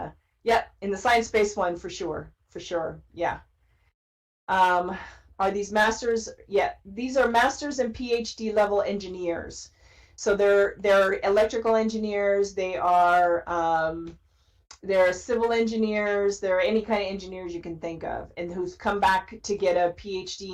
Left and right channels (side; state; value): both; identical; correlation 1.00